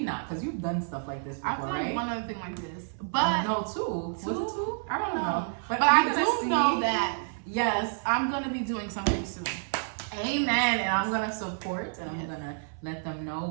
not, because you've done stuff like this before, right? I've done one other thing like this, but no, 2. Was it 2? I don't know, but I do know that I'm gonna be doing something soon. Amen. And I'm gonna support, and I'm gonna let them know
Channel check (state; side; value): silent; left; 58 dB below the other